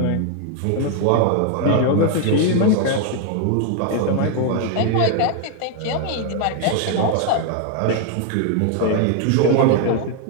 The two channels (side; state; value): both; different; correlation 0.00